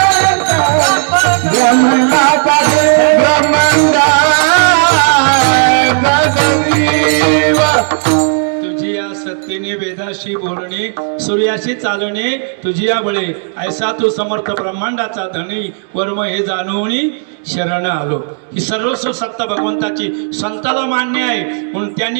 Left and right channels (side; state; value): left; silent; digital silence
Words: तुझी या सत्तेने वेदाशी बोलणे सूर्याशी चालणे तुझी या बळे ऐसा तू समर्थ ब्रह्मांडाचा धनी वर्म हे जाणवणी शरण आलो. ही सर्वस्व सत्ता भगवंताची संताला मान्य आहे म्हणून